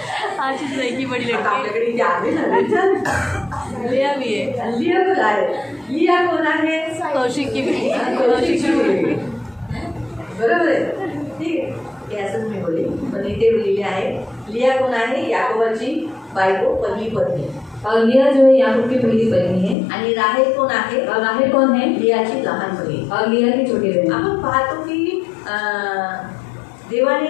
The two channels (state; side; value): drops out; right; at 19.8 s